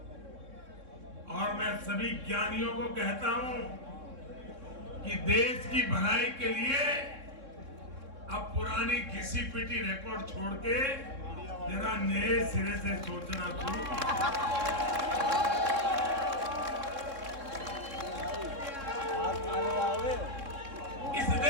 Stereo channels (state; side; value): late; left; 3.6 ms